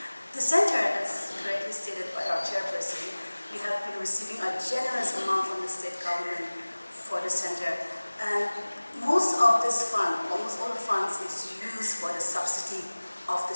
The center, as correctly stated by our chairperson, we have been receiving a generous amount from the state government for the center. And most of this fund, almost all the funds, is used for the subsidy of the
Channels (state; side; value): inverted; both; correlation -1.00